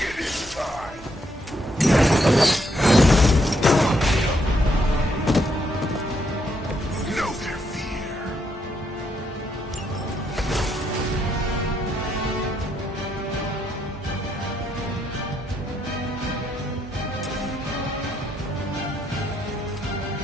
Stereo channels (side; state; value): both; normal; correlation 0.75